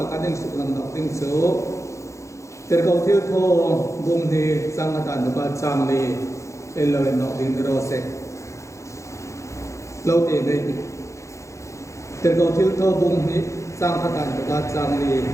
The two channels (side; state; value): right; late; 0.15 ms